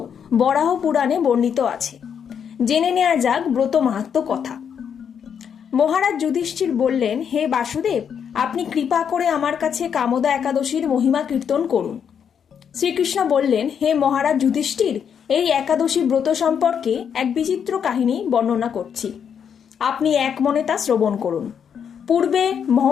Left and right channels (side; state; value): right; quieter; 7.7 dB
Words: বরাহ পুরাণে বর্ণিত আছে। জেনে নেওয়া যাক ব্রত মাহাত্ম্য কথা। মহারাজ যুধিষ্ঠির বললেন, হে বাসুদেব, আপনি কৃপা করে আমার কাছে কামদা একাদশীর মহিমা কীর্তন করুন। শ্রীকৃষ্ণ বললেন, হে মহারাজ যুধিষ্ঠির, এই একাদশী ব্রত সম্পর্কে এক বিচিত্র কাহিনী বর্ণনা করছি, আপনি এক মনে তা শ্রবণ করুন। পূর্বে